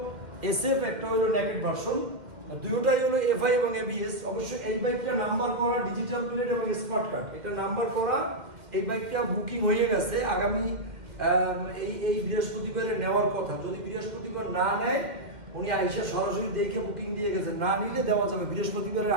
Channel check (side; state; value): left; late; 2.1 ms